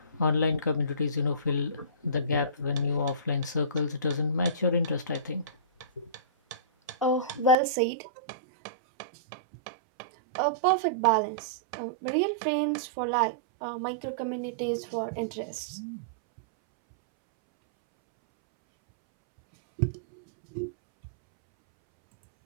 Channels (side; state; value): left; drops out; at 7.6 s